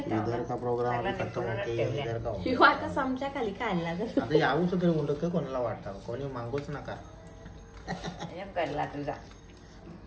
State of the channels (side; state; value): both; identical; correlation 1.00